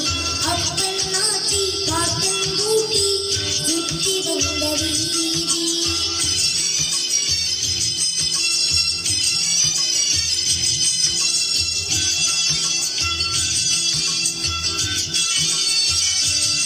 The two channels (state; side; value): identical; both; correlation 1.00